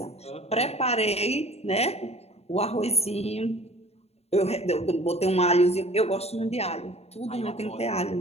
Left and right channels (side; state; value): right; late; 0.30 ms